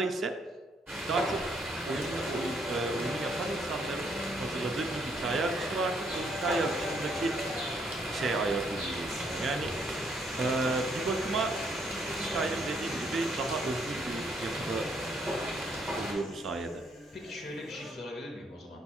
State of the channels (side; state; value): both; normal; correlation 0.70